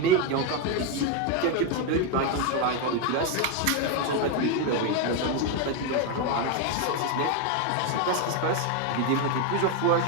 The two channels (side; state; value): both; different; correlation 0.02